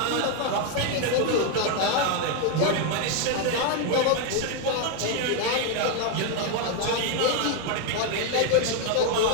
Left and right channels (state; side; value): different; both; correlation 0.01